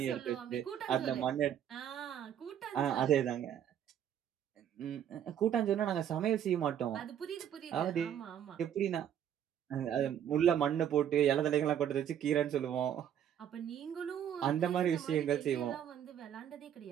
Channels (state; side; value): quieter; left; 9.7 dB